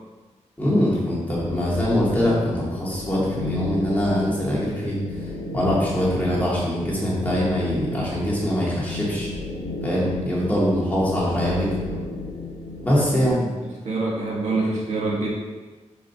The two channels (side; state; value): both; normal; correlation 0.79